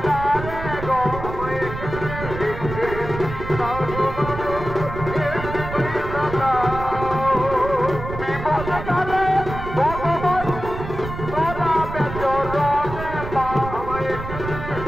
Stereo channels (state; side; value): noise; right; rumble, 8 dB below the sound